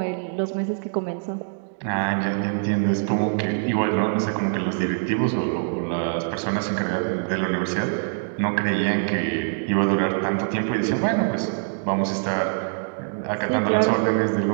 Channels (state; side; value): silent; left; digital silence